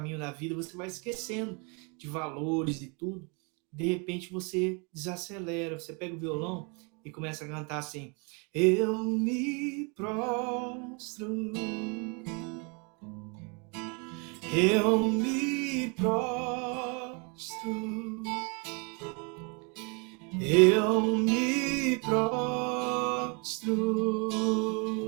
da vida, você vai esquecendo de valores e tudo. De repente você desacelera, você pega o violão e começa a cantar assim: eu me prostro, eu me prostro, eu me prostro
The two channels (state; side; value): quieter; left; 33.5 dB